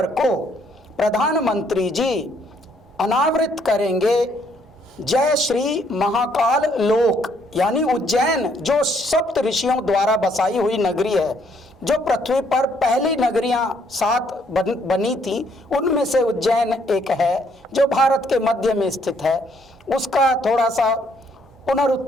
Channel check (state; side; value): normal; both; correlation 0.68